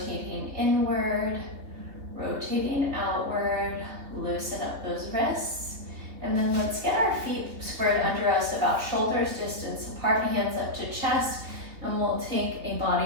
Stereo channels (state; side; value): late; left; 3.3 ms